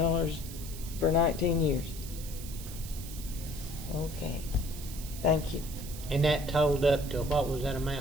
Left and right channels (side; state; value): right; noise; hiss, 13 dB below the sound